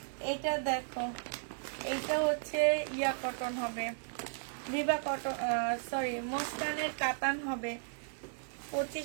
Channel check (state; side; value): silent; left; digital silence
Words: এটা দেখো, এইটা হচ্ছে ইয়া কটন হবে, বিবা কটন, সরি মসকানের কাতান হবে।